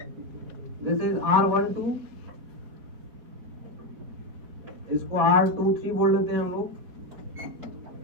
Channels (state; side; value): late; left; 4.7 ms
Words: दिस इज R12, इसको R23 बोल लेते हैं हम लोग,